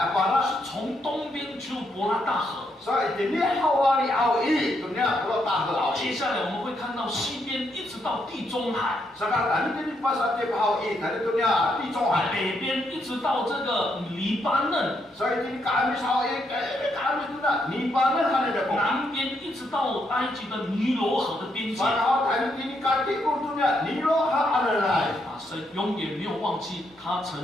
是从东边就伯拉大河。接下来我们会看到西边一直到地中海，北边一直到这个黎巴嫩，南边一直到埃及的尼罗河的边界。神永远没有忘记他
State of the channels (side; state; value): both; normal; correlation 0.78